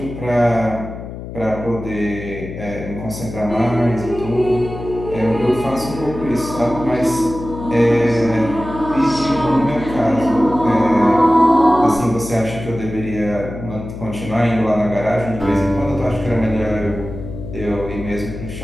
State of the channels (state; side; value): noise; left; hum, 10 dB below the sound